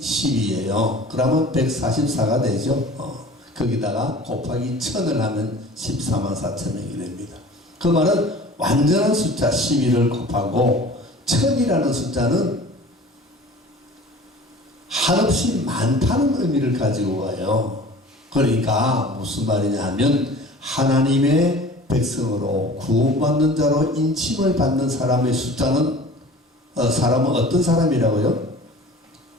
12예요. 그러면 144가 되죠. 거기다가 곱하기 1000을 하면 14만 4천 명이 됩니다. 그 말은 완전한 숫자 12를 곱하고 1000이라는 숫자는 한없이 많다는 의미를 가지고 와요. 그러니까 무슨 말이냐 하면 하나님의 백성으로 구원받는 자로 인침을 받는 사람의 숫자는 사람은 어떤 사람이라고요?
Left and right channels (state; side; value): normal; both; correlation 0.43